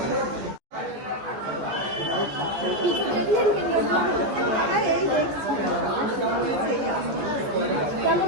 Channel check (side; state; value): left; late; 14 ms